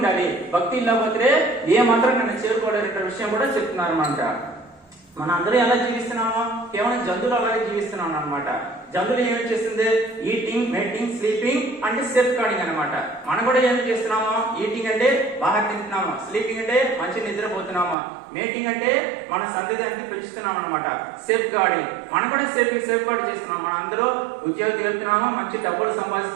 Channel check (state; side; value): drops out; left; at 17.9 s